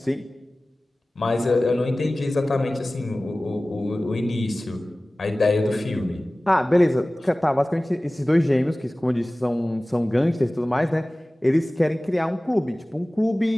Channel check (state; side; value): normal; both; correlation 0.98